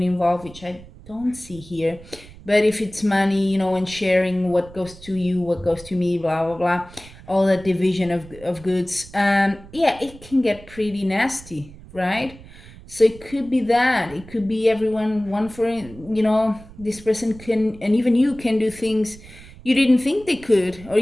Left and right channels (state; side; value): noise; right; rumble, 19 dB below the sound